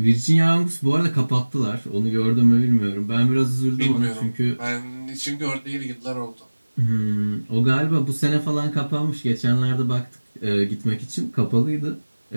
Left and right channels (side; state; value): both; inverted; correlation -1.00